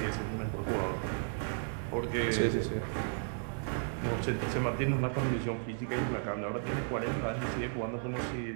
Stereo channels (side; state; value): left; silent; digital silence